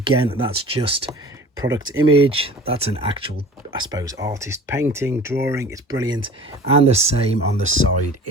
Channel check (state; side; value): normal; both; correlation 0.43